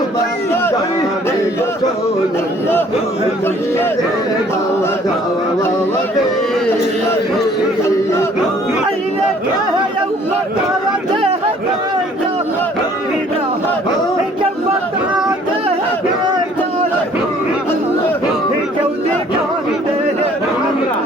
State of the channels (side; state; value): both; normal; correlation 0.57